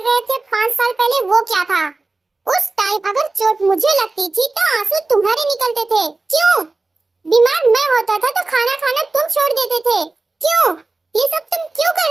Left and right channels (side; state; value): left; quieter; 3.4 dB